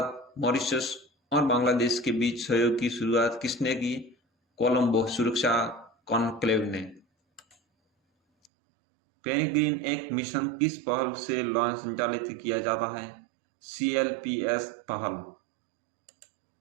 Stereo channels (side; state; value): left; drops out; at 8.5 s